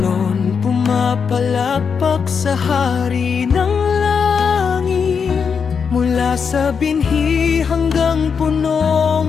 pumapalakpak sa hari ng langit. Mula sa binhi hanggang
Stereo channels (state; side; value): quieter; right; 6.2 dB